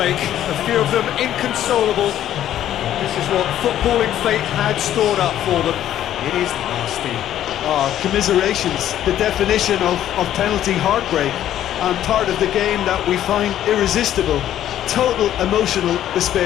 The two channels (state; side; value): quieter; right; 11.7 dB